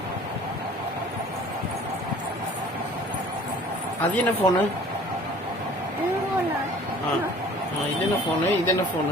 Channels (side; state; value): both; normal; correlation 0.49